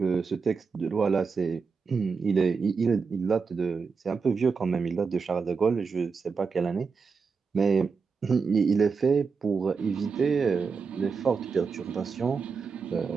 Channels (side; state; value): left; quieter; 5.2 dB